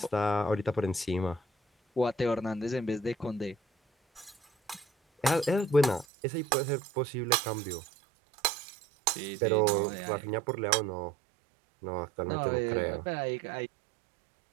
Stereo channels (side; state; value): left; drops out; at 6.1 s